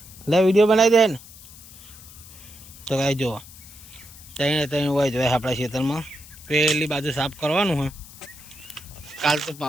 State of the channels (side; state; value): left; noise; hiss, 19 dB below the sound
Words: લે વિડીયો બનાવી દે ને. તો કાંઈ જો ત્યાં હોય જોઈએ આપણા ખેતરમાં પેલી બાજુ સાફ કરવાનું હોય. કાલ તો